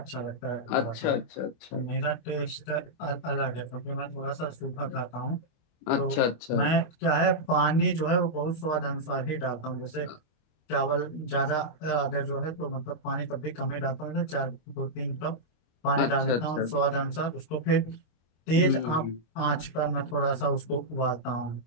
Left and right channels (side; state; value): right; late; 25 ms